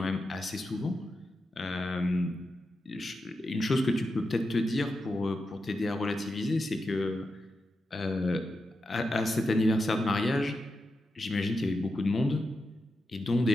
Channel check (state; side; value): normal; both; correlation 0.88